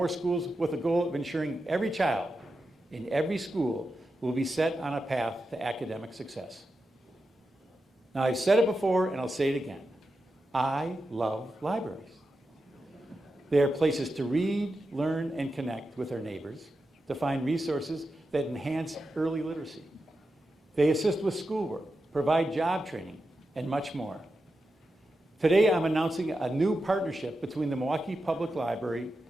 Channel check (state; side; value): normal; both; correlation 0.89